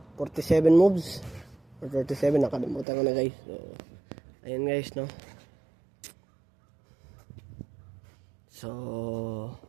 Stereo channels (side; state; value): left; drops out; at 2.9 s